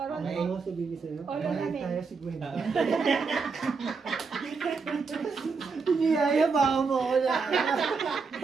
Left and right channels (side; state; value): left; quieter; 4.9 dB